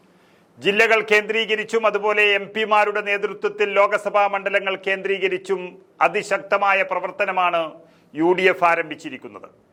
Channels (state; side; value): identical; both; correlation 1.00